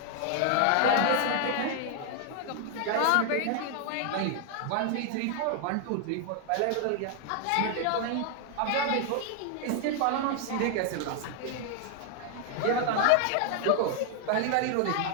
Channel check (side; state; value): both; different; correlation 0.00